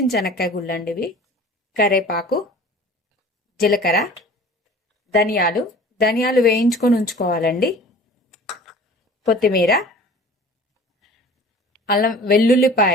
శనక్కాయ గుళ్ళు అండి ఇవి, కరేపాకు, జీలకర్ర, ధనియాలు వేయించుకొని ఉంచుకోవాలండి, కొత్తిమీర, అల్లం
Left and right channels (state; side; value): normal; both; correlation 0.44